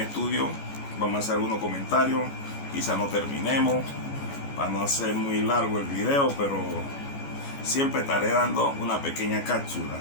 estudio. Vamos a hacer algunos comentarios. Quizá no terminemos para no hacer muy largo el video, pero siempre estaré dando una pequeña cápsula.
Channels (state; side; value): late; right; 14 ms